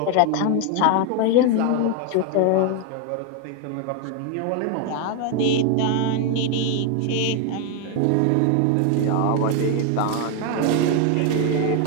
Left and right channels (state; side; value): different; both; correlation 0.01